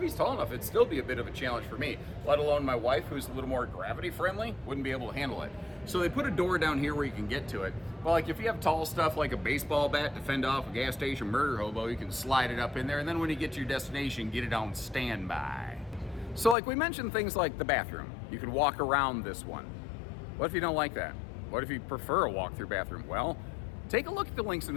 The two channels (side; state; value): right; drops out; at 16.6 s